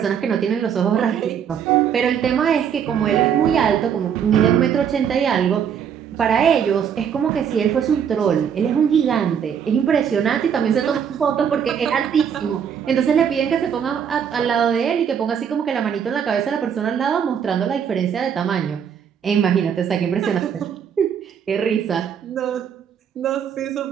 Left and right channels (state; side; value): quieter; left; 8.0 dB